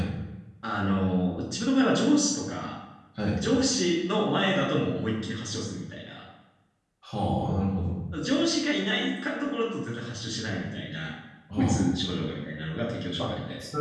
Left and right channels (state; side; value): identical; both; correlation 1.00